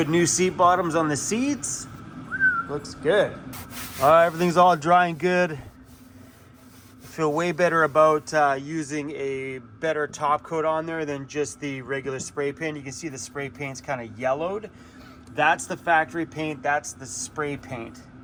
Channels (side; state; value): both; identical; correlation 1.00